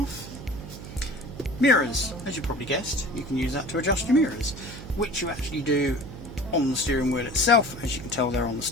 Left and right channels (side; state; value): right; noise; hum, 12 dB below the sound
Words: Mirrors, as you probably guessed, you can use that to adjust your mirrors, which you actually do on the steering wheel itself. As you can tell, they're on the